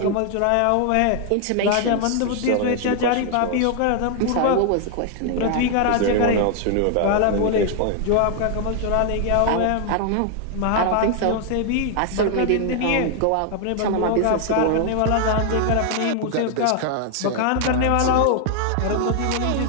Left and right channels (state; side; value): different; both; correlation 0.00